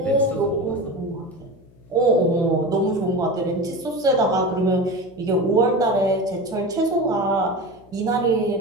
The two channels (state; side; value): noise; left; hum, 26 dB below the sound